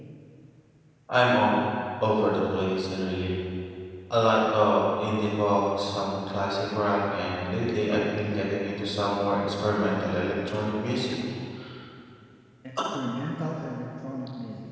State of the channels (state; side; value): identical; both; correlation 1.00